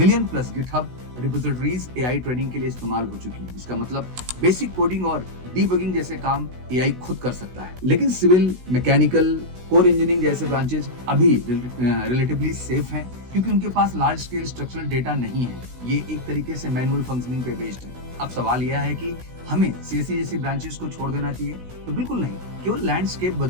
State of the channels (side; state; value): left; late; 16 ms